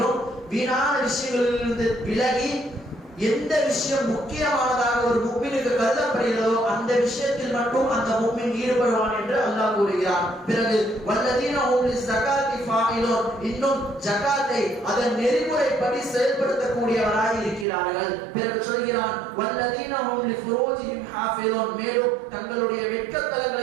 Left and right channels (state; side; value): drops out; left; at 17.7 s